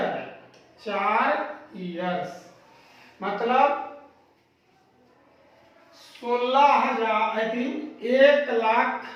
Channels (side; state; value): both; identical; correlation 1.00